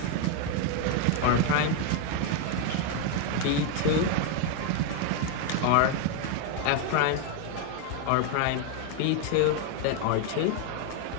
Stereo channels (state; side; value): different; both; correlation 0.01